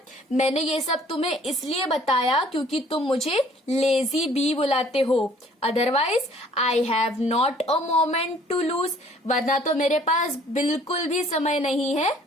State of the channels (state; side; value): normal; both; correlation 0.57